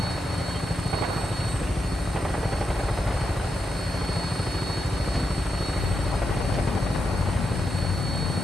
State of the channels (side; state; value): both; normal; correlation 0.85